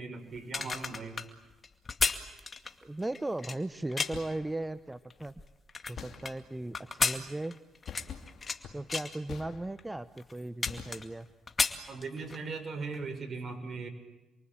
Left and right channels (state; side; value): normal; both; correlation 0.89